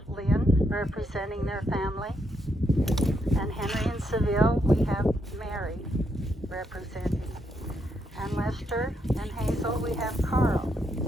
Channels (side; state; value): both; normal; correlation 0.78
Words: Lynn representing their family, and Henry and Seville, we have Mary representing. And Lester and Hazel, we have Carl.